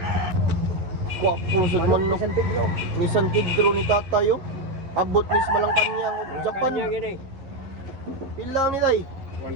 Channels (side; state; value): left; late; 11 ms